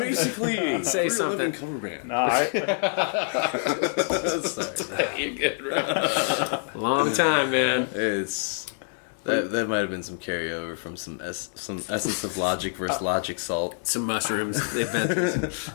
say something. Cover band. Sorry, you're good, bro. Long time, man. It's that might have been some carryover from some Essence of Logic versus Logic Salt. Some mushrooms. Adventures.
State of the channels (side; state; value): right; silent; digital silence